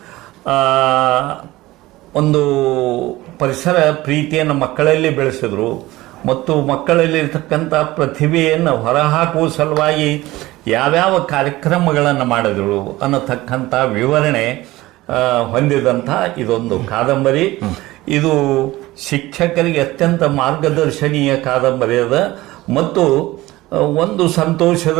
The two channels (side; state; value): left; quieter; 18.2 dB